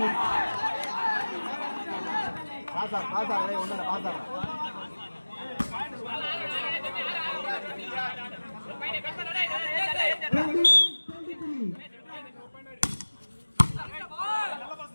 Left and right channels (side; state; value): both; inverted; correlation -1.00